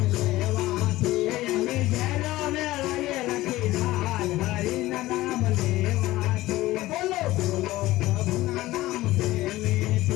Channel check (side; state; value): right; quieter; 17.2 dB